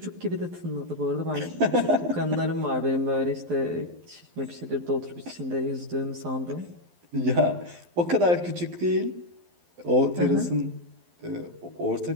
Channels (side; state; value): left; late; 12 ms